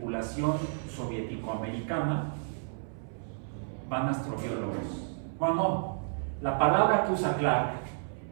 soviético-americana, van astrobiólogos. Bueno, la palabra que usa Clark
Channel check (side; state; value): left; silent; 57 dB below the other